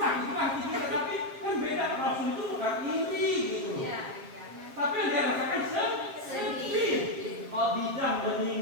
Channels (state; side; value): late; left; 7.4 ms